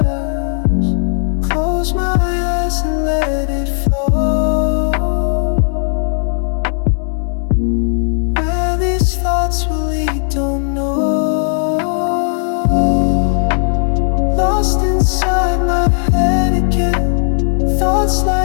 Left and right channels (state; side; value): silent; right; digital silence